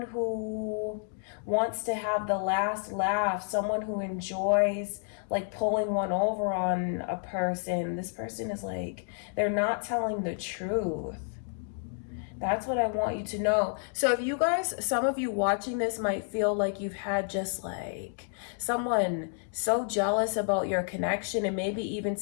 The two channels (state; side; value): silent; right; 58 dB below the other